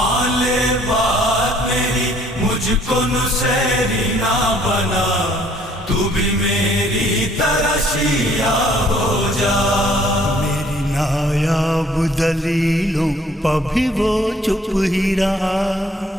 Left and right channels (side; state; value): both; normal; correlation 0.60